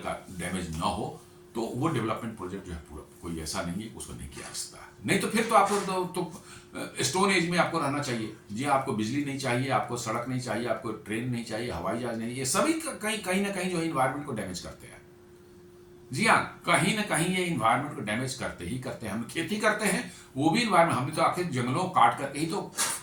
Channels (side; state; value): both; identical; correlation 1.00